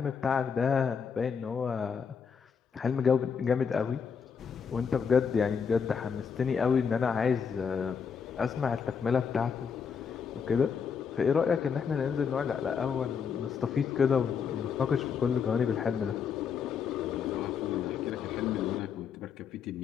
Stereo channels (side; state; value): right; quieter; 6.5 dB